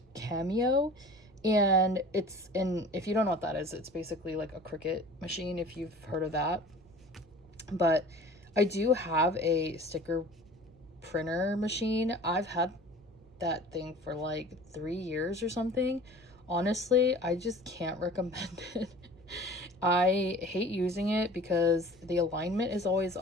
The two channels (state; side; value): noise; right; rumble, 27 dB below the sound